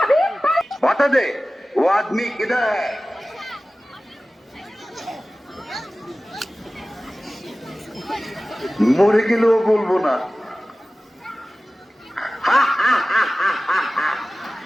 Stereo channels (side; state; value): both; normal; correlation 0.97